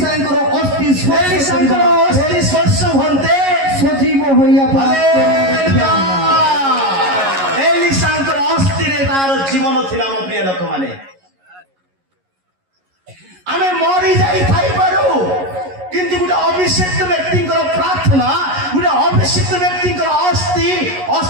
ଅସ୍ଥି ସ୍ପର୍ଶ ହୁଅନ୍ତେ, ସଜୀବ ହୋଇଆ ଏଲିସାଙ୍କର ଅସ୍ଥିରେ ତାର ଜୀବନ ଥିଲା। ମୋ ପ୍ରିୟ ଲୋକମାନେ, ଆମେ ମରି ଯାଇଥାଇପାରୁ, କିନ୍ତୁ ଗୋଟେ ଅଭିଷିକ୍ତ ବ୍ୟକ୍ତିଙ୍କର ପ୍ରାର୍ଥନା, ଗୋଟେ ଅଭିଷିକ୍ତ ବ୍ୟକ୍ତିଙ୍କର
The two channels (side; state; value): left; late; 11 ms